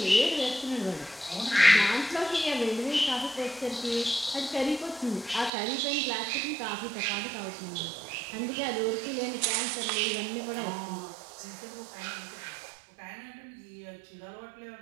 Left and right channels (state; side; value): drops out; left; at 5.5 s